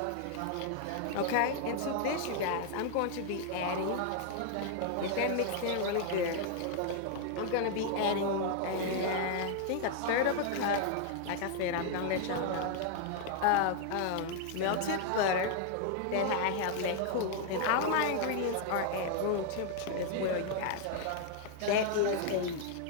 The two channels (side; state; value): both; different; correlation 0.00